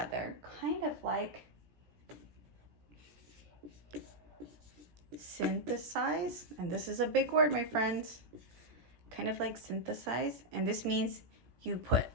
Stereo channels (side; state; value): left; late; 17 ms